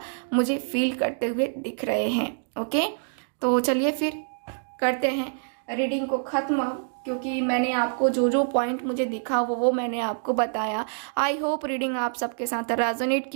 मुझे फील करते हुए दिख रहे हैं। ओके, तो चलिए फिर करते हैं रीडिंग को ख़त्म, क्योंकि मैंने आपको जो जो पॉइंट मुझे दिखा वो मैंने आपको बताया। आई होप रीडिंग आप सबके साथ रेजोनेट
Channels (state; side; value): silent; left; digital silence